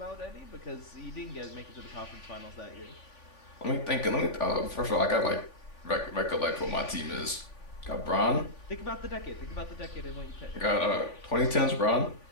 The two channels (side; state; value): right; late; 3.5 ms